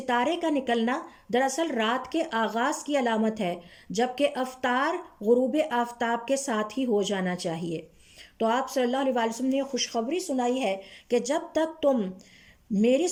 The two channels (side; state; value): both; identical; correlation 1.00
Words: کا نکلنا دراصل رات کے آغاز کی علامت ہے، جبکہ افطار غروب آفتاب کے ساتھ ہی ہو جانا چاہیے۔ تو آپ صلی اللہ علیہ وسلم نے خوشخبری سنائی ہے کہ جب تک تم میری